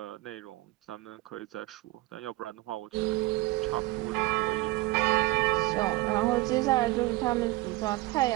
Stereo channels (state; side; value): quieter; left; 20.1 dB